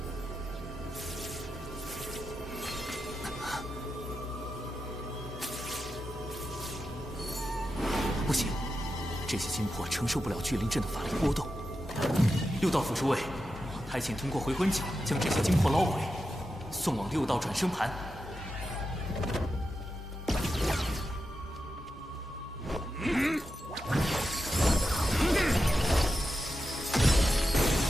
不行。这些金魄承受不了聚灵阵的法力波动。六道府诸位，太监通过回魂脚将这些金魄捞回，送往六道转生盘。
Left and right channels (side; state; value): both; normal; correlation 0.89